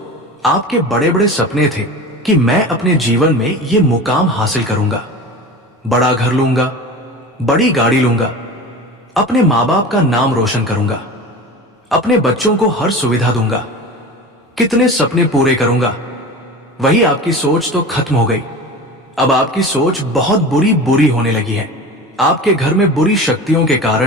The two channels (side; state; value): both; normal; correlation 0.33